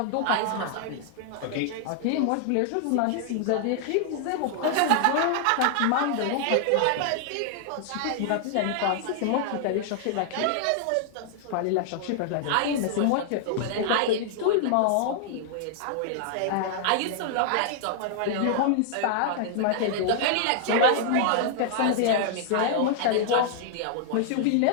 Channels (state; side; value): different; both; correlation -0.01